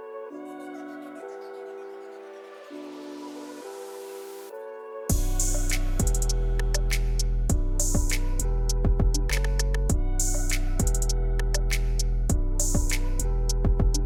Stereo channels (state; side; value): identical; both; correlation 1.00